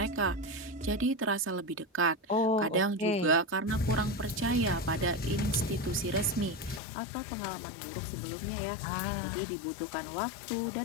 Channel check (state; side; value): drops out; right; at 6.8 s